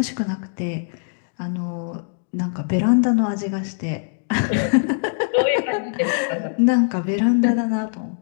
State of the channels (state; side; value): silent; right; digital silence